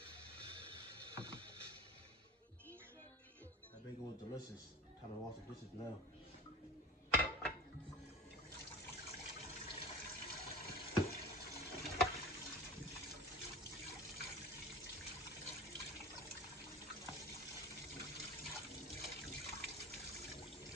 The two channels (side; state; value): both; normal; correlation 0.34